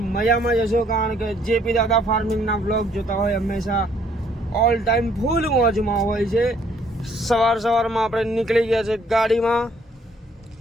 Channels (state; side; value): normal; both; correlation 0.64